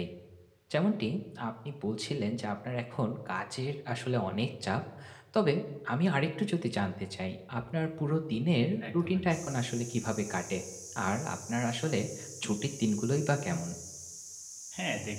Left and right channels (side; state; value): both; identical; correlation 1.00